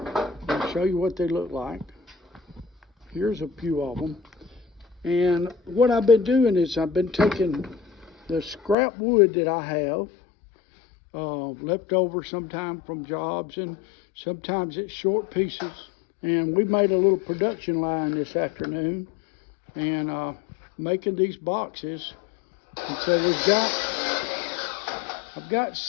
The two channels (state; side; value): drops out; right; at 8.8 s